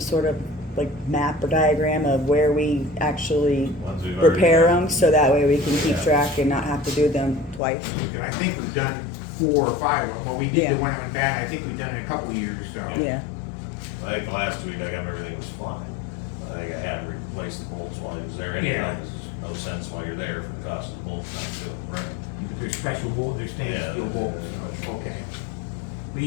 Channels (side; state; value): right; drops out; at 7.6 s